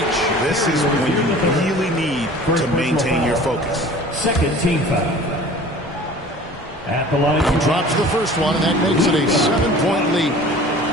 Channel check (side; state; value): both; normal; correlation 0.44